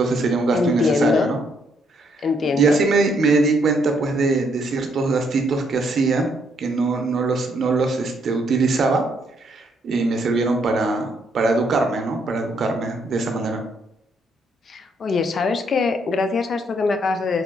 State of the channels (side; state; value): both; normal; correlation 0.72